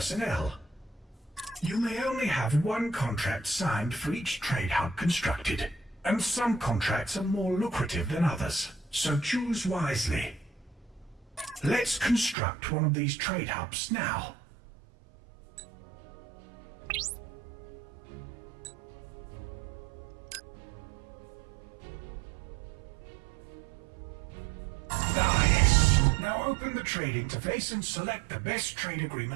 You may only have one contract signed for each trade hub constructed, and some contracts are more lucrative than others, so choose wisely. Let's construct one of these trade hubs now. Nice! Now open the trade interface and select the best trade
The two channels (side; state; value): left; drops out; at 12.4 s